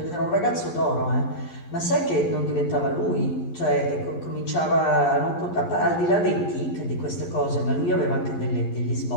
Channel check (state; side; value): late; right; 11 ms